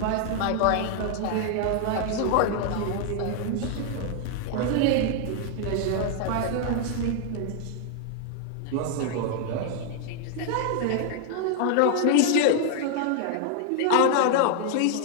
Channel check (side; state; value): both; different; correlation 0.00